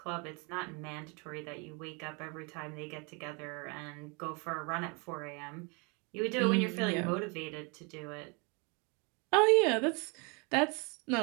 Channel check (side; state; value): left; quieter; 31.5 dB